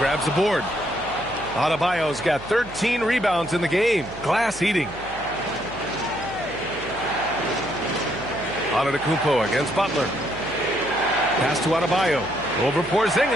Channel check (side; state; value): right; noise; hum, 17 dB below the sound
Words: the board. Adebayo's got 13 rebounds in the game. Glass eating. Antetokounmpo against Butler. Pass to Adebayo. Over